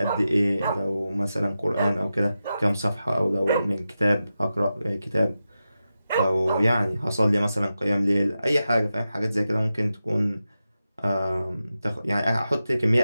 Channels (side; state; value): both; inverted; correlation -0.91